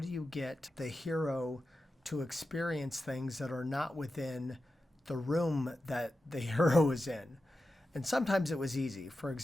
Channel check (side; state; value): both; normal; correlation 0.91